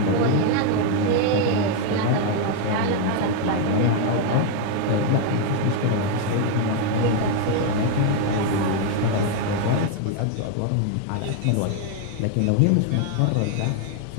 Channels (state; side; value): different; both; correlation 0.01